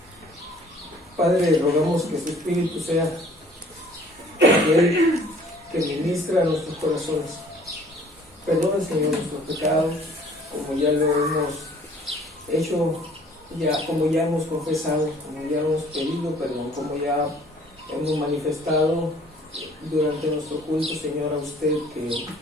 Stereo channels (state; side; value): normal; both; correlation 0.55